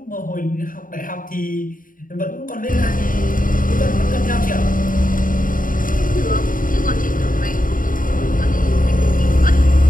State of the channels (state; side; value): late; right; 0.40 ms